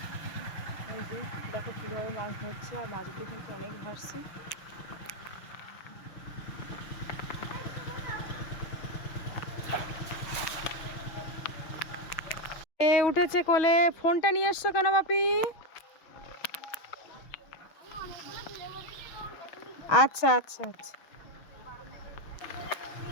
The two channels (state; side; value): late; right; 6.3 ms